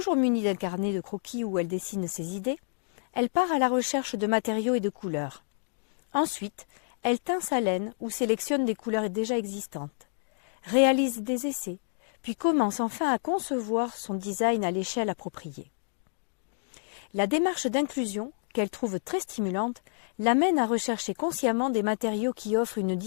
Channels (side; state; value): right; silent; digital silence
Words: munie d'un carnet de croquis où elle dessine ses idées, elle part à la recherche de matériaux et de couleurs. Ensuite, elle teint sa laine ou sélectionne des couleurs déjà existantes, réalise des essais, puis commence enfin à concevoir son design à l'échelle appropriée. La démarche d'inclusion, qu'elle trouve très stimulante, l'amène à rechercher consciemment des matériaux qui offrent une